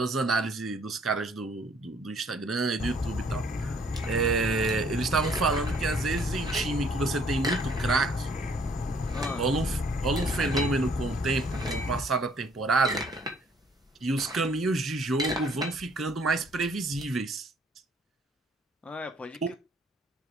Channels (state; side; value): normal; both; correlation 0.61